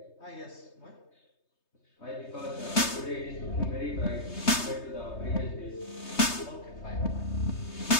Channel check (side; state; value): right; late; 3.2 ms